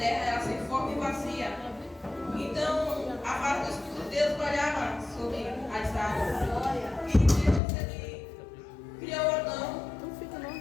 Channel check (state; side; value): drops out; right; at 7.6 s